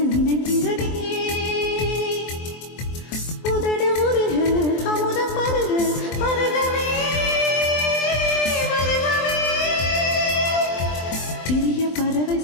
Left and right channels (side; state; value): right; late; 23 ms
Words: நினைக்கிறதே. உதடு உருக அமுதம் பருக பருகவே பருகவே. சிறிய பறவை